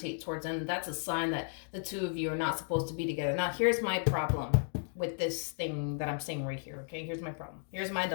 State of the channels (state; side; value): silent; right; digital silence